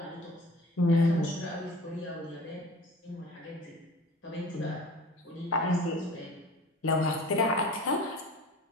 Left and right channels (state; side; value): normal; both; correlation 0.41